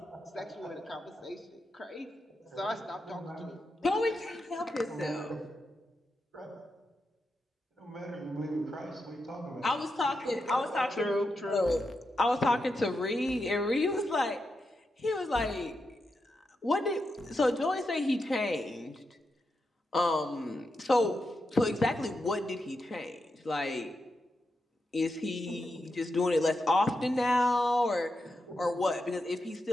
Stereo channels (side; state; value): both; normal; correlation 0.86